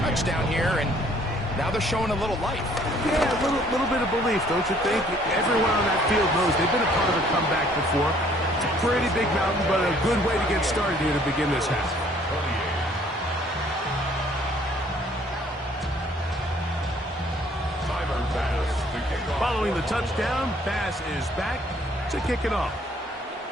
here, and now they're showing a little life. Yeah, a little bit of belief, don't you think? Everyone on that field knows they've been a part of a comeback before. It's a pretty big mountain, but a good way to get started here to begin this half. Timer pass to gain Following the touchdown, Bass is back to kick it off.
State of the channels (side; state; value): both; normal; correlation 0.60